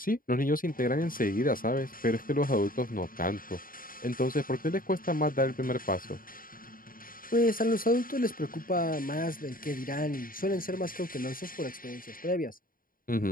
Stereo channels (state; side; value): late; right; 0.41 ms